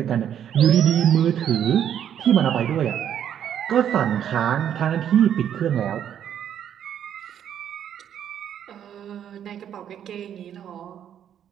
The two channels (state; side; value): quieter; left; 9.6 dB